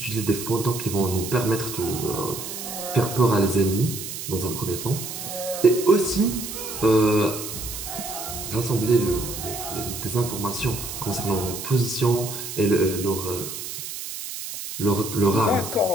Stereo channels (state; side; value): noise; right; hiss, 8 dB below the sound